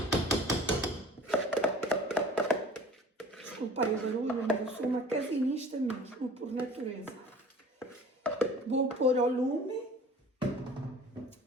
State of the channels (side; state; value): both; normal; correlation 0.45